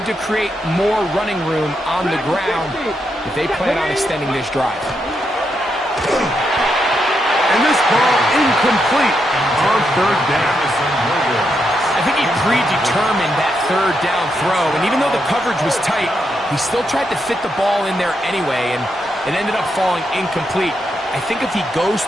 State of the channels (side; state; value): both; normal; correlation 0.82